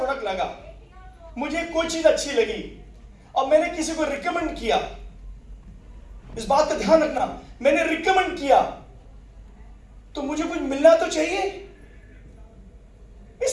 लगा, मुझे कोई चीज अच्छी लगी और मैंने किसी को रिकमेंड किया, इस बात का ध्यान रखना, मैंने रिकमेंड किया तो मुझे कुछ मिलना तो चाहिए। इस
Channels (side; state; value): both; identical; correlation 1.00